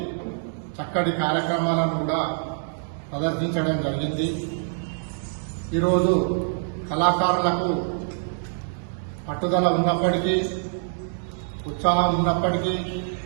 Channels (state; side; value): silent; left; digital silence